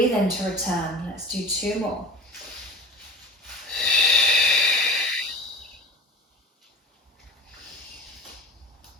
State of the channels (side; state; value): both; normal; correlation 0.34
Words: in to return. Let's do two more.